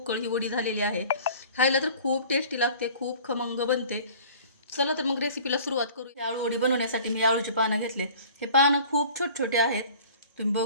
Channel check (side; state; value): both; inverted; correlation -0.47